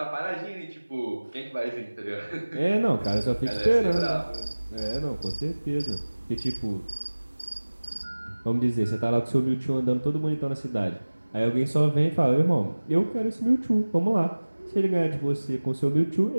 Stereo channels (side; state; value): both; inverted; correlation -1.00